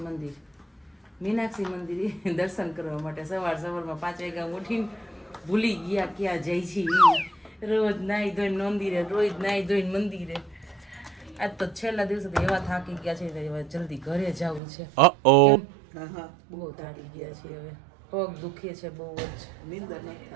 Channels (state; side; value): drops out; left; at 14.6 s